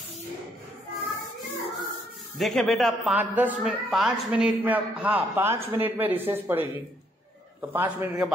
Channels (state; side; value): normal; both; correlation 0.70